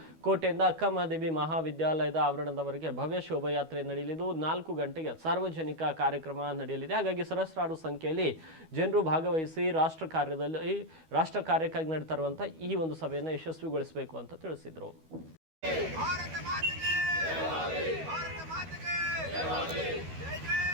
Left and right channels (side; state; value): left; late; 12 ms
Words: ಕೋಟೆಯಿಂದ ಅಕ್ಕಮಹಾದೇವಿ ಮಹಾವಿದ್ಯಾಲಯದ ಆವರಣದವರೆಗೆ ಭವ್ಯ ಶೋಭಾಯಾತ್ರೆ ನಡೆಯಲಿದ್ದು, 4 ಗಂಟೆಗೆ ಸಾರ್ವಜನಿಕ ಕಾರ್ಯಕ್ರಮ ನಡೆಯಲಿದೆ. ಹಾಗಾಗಿ ಸಹಸ್ರಾರು ಸಂಖ್ಯೆಯಲ್ಲಿ ಜನರು ಭಾಗವಹಿಸಿ ರಾಷ್ಟ್ರ ಕಾರ್ಯಕ್ಕಾಗಿ ನಡೀತಾ ಇರುವಂತಹ ಈ ಒಂದು ಸಭೆಯನ್ನು ಯಶಸ್ವಿಗೊಳಿಸಬೇಕು ಅಂತ ತಿಳಿಸಿದರು.